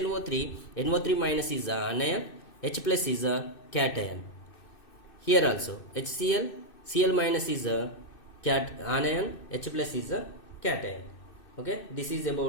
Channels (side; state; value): right; late; 2.6 ms